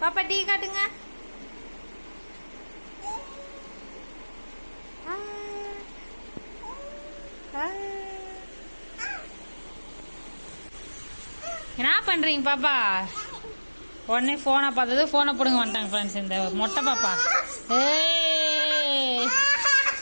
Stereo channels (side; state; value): both; inverted; correlation -1.00